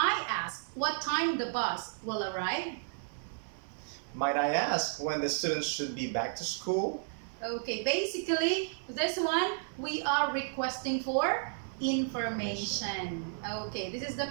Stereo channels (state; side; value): silent; left; digital silence